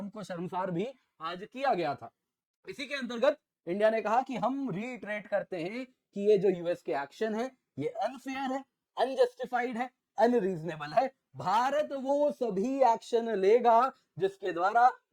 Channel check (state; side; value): identical; both; correlation 1.00